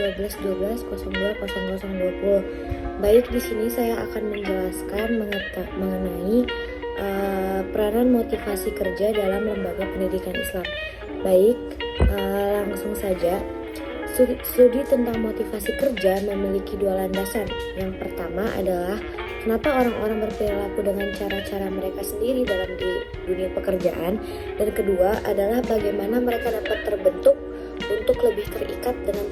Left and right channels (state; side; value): identical; both; correlation 1.00